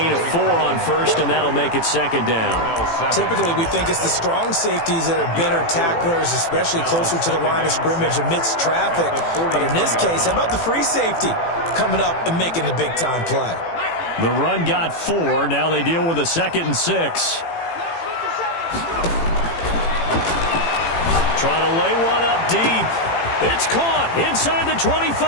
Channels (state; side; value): late; right; 18 ms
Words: of 4 on first, and that'll make it 2nd down. Typically, we think it's the strong safeties that are better tacklers, especially closer to the line of scrimmage amidst traffic. But in this case, how about the free safety coming up and making the big-time play? The run got 4. Now they deal with a 2nd and 6. Trying to lay one up deep. It's caught inside the